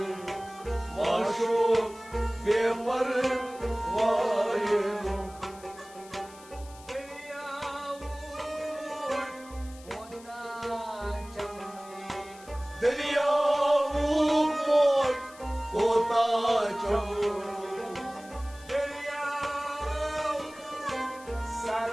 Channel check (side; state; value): left; noise; hiss, 21 dB below the sound